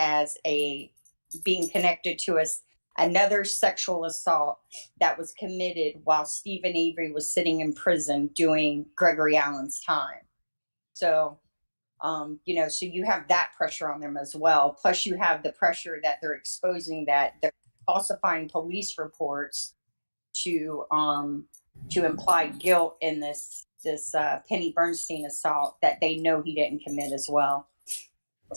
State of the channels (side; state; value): both; inverted; correlation -1.00